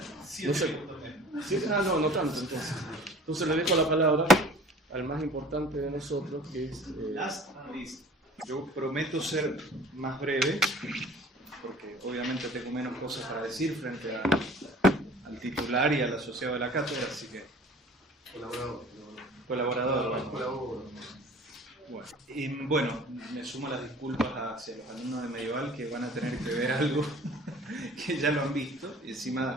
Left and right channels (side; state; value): both; normal; correlation 0.46